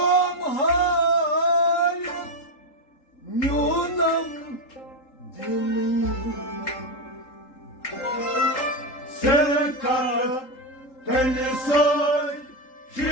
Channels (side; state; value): right; late; 3.8 ms